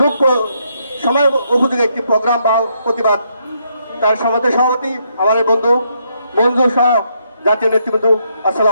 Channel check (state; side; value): inverted; both; correlation -0.75